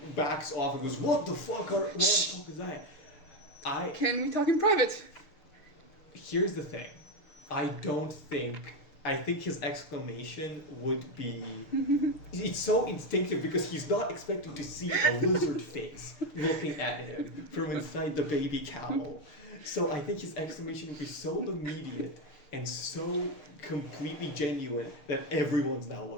backs off and goes, "What the fuck is that?" Can we talk in private? Here's the thing. I think his exclamation would be. It's so instinctive because he's not expecting to see a lizard face looking at him from inside the baby cowl. So I think his exclamation would be so immediate and so completely genuine that everyone's now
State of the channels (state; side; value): late; right; 6.6 ms